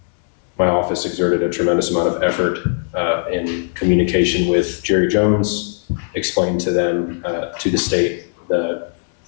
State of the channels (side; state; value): right; silent; digital silence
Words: My office exerted a tremendous amount of effort in communication with Jerry Jones, explained to them, to the state, the